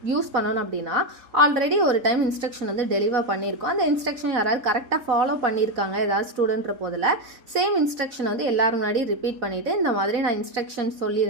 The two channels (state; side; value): late; left; 4.0 ms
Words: யூஸ் பண்ணணும் அப்படின்னா, ஆல்ரெடி ஒரு டைம் இன்ஸ்ட்ரக்ஷன் வந்து டெலிவர் பண்ணியிருக்கோம், அந்த இன்ஸ்ட்ரக்ஷன் யாராவது கரெக்டாக ஃபாலோ பண்ணியிருக்காங்க ஏதாவது ஸ்டூடெண்ட்ற போதில் சேம் இன்ஸ்ட்ரக்ஷன் வந்து எல்லாரும் முன்னாடி ரிப்பீட் பண்ணிவிட்டு இந்த மாதிரி நான் இன்ஸ்ட்ரக்ஷன்